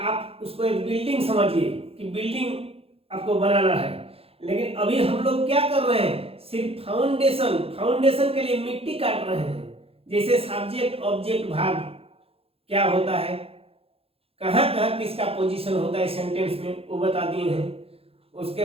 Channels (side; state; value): left; late; 0.28 ms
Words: उसको एक बिल्डिंग समझिए कि बिल्डिंग आपको बनाना है। लेकिन अभी हम लोग क्या कर रहे हैं, सिर्फ फाउंडेशन के लिए मिट्टी काट रहे हैं। जैसे सब्जेक्ट ऑब्जेक्ट भार्ब क्या होता है, कहाँ कहाँ किसका पोजीशन होता है सेंटेंस में, वो बता दिए हैं। उसके